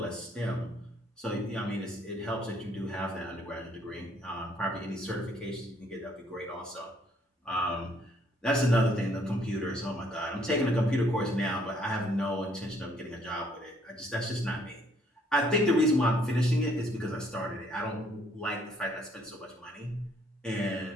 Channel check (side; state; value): both; normal; correlation 0.65